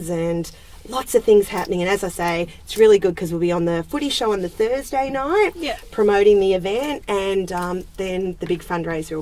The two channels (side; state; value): both; identical; correlation 1.00